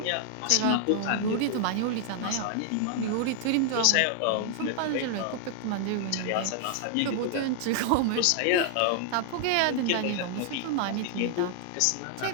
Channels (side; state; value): both; different; correlation 0.00